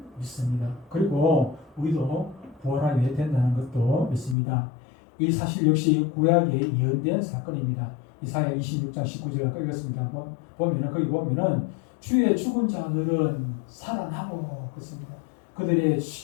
믿습니다. 그리고 우리도 부활하게 된다는 것도 믿습니다. 이 사실 역시 구약에 예언된 사건입니다. 이사야 26장 19절을 읽었습니다. 거기 보면은 주의 죽은 자들은 살아나고 그렇습니다. 그들의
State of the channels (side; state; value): right; drops out; at 4.4 s